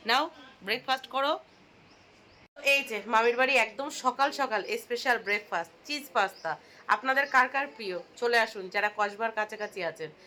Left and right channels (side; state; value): both; identical; correlation 1.00